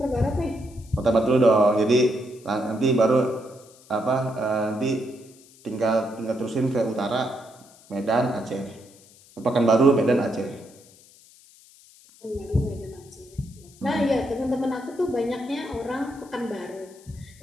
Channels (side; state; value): left; noise; hiss, 25 dB below the sound